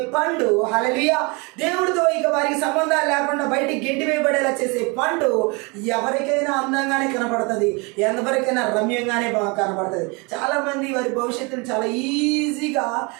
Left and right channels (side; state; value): left; quieter; 29.4 dB